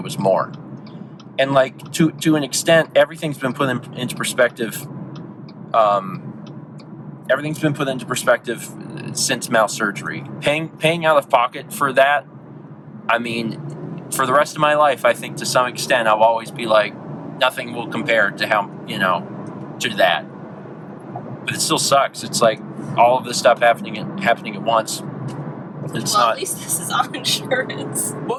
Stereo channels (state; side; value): identical; both; correlation 1.00